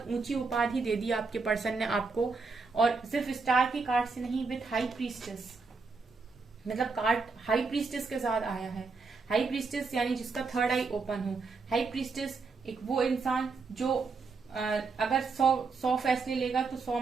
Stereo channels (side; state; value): left; quieter; 4.4 dB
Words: ऊंची उपाधि दे दी आपके पर्सन ने आपको, और सिर्फ स्टार के कार्ड से नहीं, विथ हाई प्रीस्टेस, मतलब कार्ड हाई प्रीस्टेस के साथ आया है। हाई प्रीस्टेस यानी जिसका थर्ड आई ओपन हो। हाई प्रीस्टेस एक वो इंसान जो अगर 100 फैसले लेगा तो 100